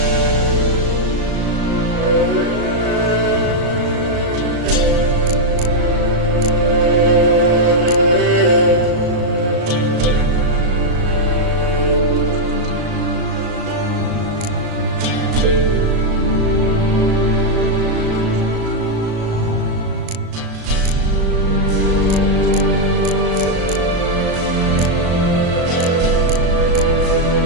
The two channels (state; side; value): late; left; 36 ms